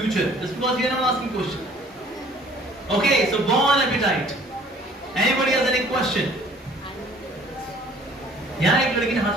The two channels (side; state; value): both; normal; correlation 0.53